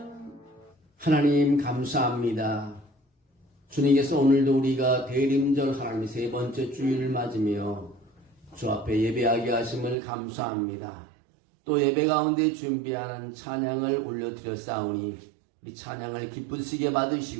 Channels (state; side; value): drops out; left; at 10.0 s